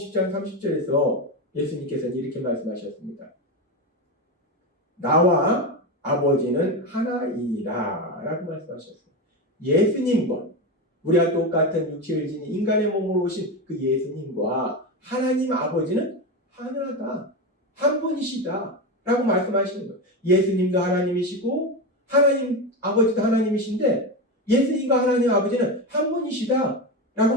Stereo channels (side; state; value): both; normal; correlation 0.17